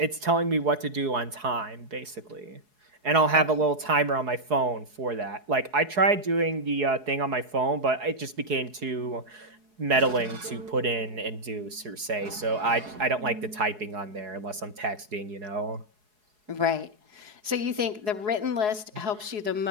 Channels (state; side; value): late; left; 4.7 ms